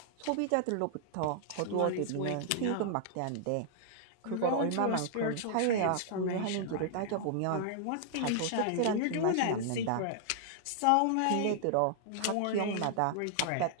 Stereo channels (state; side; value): different; both; correlation -0.01